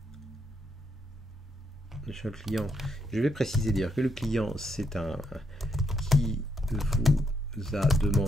De chez le client, je vais préciser dire que le client, c'est un qui vous a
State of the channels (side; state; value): both; normal; correlation 0.77